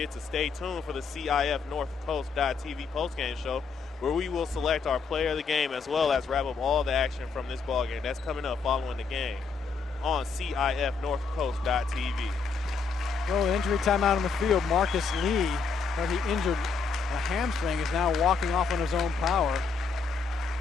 to stay tuned for the CIF-North Coast.tv postgame show, where we will select our player of the game as well as wrap up all the action from this ball game. That's coming up following the game on CIF-North-Coast.tv. Well, an injury timeout on the field. Marcus Lee, where he injured a hamstring, is now walking off on his own power.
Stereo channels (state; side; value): quieter; right; 5.0 dB